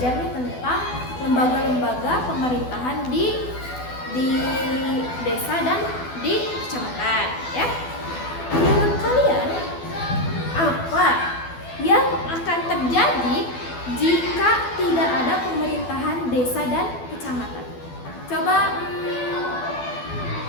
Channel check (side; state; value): right; late; 12 ms